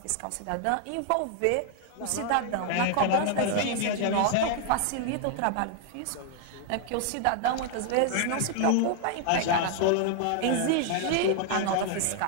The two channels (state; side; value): different; both; correlation 0.00